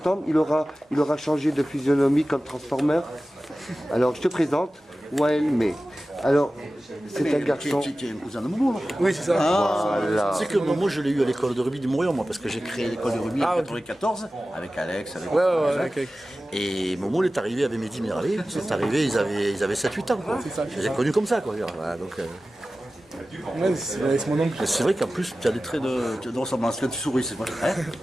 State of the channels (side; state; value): both; normal; correlation 0.95